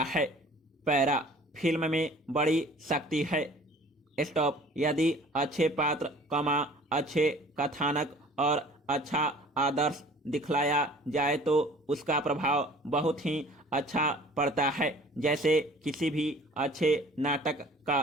है। पैरा। फिल्म में बड़ी शक्ति है। स्टॉप। यदि अच्छे पात्र, अच्छे कथानक और अच्छा आदर्श दिखलाया जाए तो उसका प्रभाव बहुत ही अच्छा पड़ता है, जैसे किसी भी अच्छे नाटक का।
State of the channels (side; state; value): both; normal; correlation 0.49